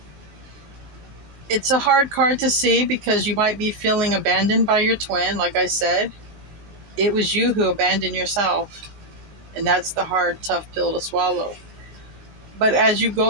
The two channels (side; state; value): left; late; 20 ms